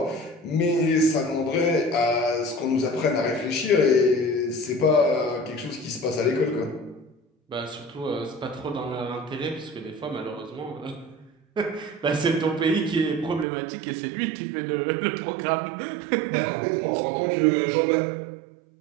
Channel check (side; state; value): left; drops out; at 13.5 s